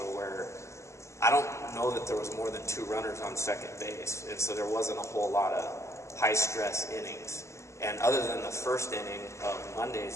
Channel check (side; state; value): right; late; 0.14 ms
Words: where I don't know that there was more than 2 runners on second base, and so there wasn't a whole lot of high-stress innings. And other than the first inning of